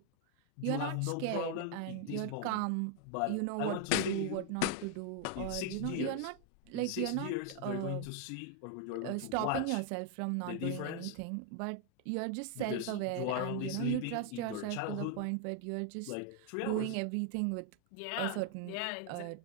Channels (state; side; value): different; both; correlation 0.00